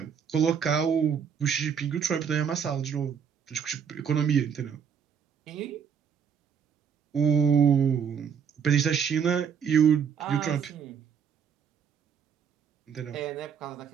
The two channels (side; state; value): left; quieter; 7.3 dB